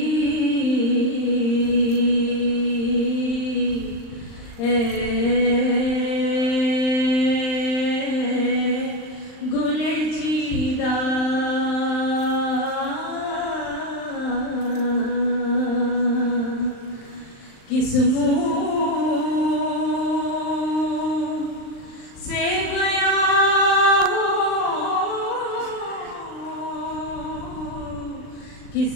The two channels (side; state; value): right; late; 39 ms